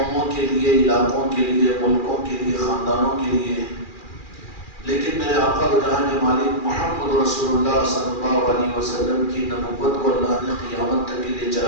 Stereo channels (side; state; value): right; late; 2.4 ms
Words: کے لیے، علاقوں کے لیے، ملکوں کے لیے، خاندانوں کے لیے، لیکن میرے آقا و جہاں کے مالک محمد رسول اللہ صلی اللہ علیہ وسلم کی نبوت کو اللہ نے قیامت تک کے لیے